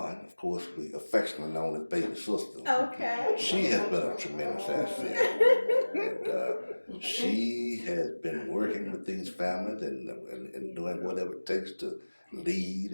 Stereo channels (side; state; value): both; inverted; correlation -1.00